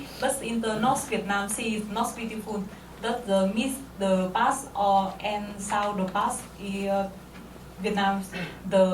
But in the North Vietnam, sea is not beautiful. That the miss the past and south the past. Vietnam,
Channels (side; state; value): both; identical; correlation 1.00